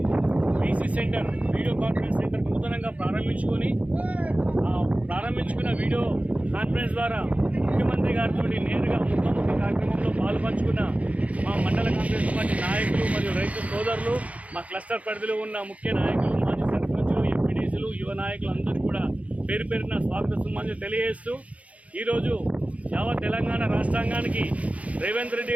VC centre, video conference centre నూతనంగా ప్రారంభించుకున్న వీడియో కాన్ఫరెన్స్ ద్వారా ముఖ్యమంత్రి గారితో నేరుగా ముఖాముఖి కార్యక్రమంలో పాల్పంచుకున్న మా మండల కాంగ్రెస్ పార్టీ నాయకులు మరియు రైతు సోదరులు, మా క్లస్టర్ పరిధిలో ఉన్న ముఖ్య నాయకులు, మాజీ సర్పంచులు, ఎంపీడీసీలు, యువ నాయకులు అందరూ కూడా పేరు పేరున స్వాగత సుమాన్లు తెలియజేస్తూ ఈరోజు యావత్ తెలంగాణ రాష్ట్రాంగానికి రేవంత్ రెడ్డి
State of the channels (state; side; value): late; left; 0.067 ms